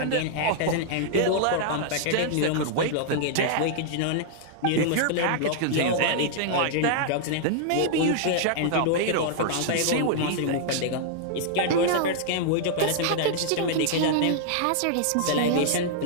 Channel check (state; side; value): different; both; correlation -0.01